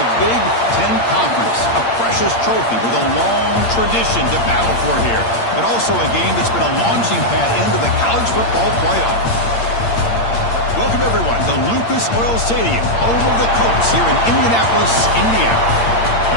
Big Ten Conference. A precious trophy with a long tradition to battle for here. But also a game that's been a launching pad into the college football playoff. Welcome, everyone, to Lucas Oil Stadium, home of the Colts here in Indianapolis, Indiana.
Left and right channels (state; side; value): late; right; 8.7 ms